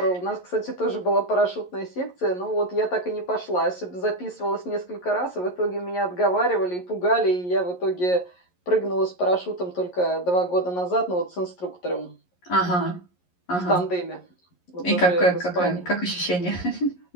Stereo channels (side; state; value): right; late; 11 ms